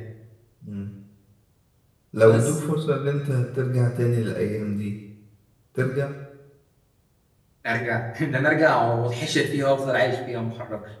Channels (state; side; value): identical; both; correlation 1.00